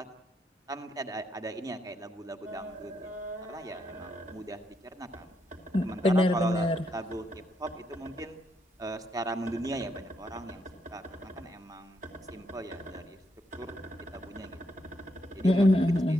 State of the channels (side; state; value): both; normal; correlation 0.78